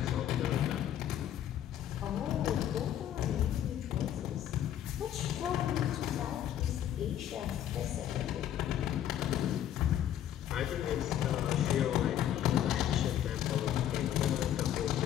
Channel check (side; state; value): right; quieter; 11.0 dB